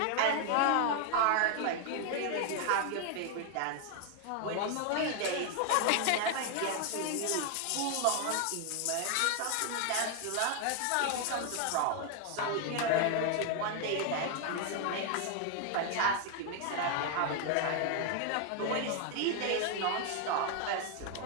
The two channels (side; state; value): both; different; correlation 0.01